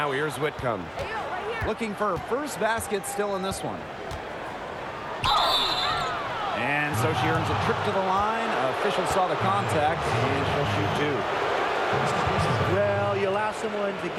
here's Whitcomb. Looking for her first basket still in this one. And so she earns a trip to the line. Officials saw the contact, and she'll shoot 2. Well, you allow someone to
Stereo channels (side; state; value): both; identical; correlation 1.00